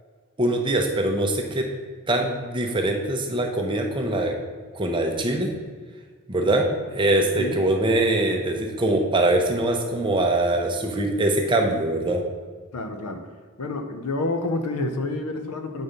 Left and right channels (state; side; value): normal; both; correlation 0.36